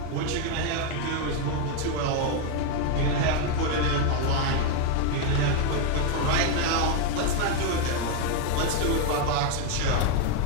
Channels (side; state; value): both; different; correlation 0.01